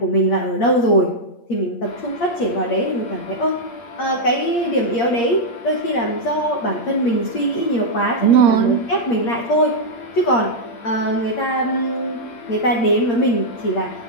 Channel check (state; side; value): late; right; 8.6 ms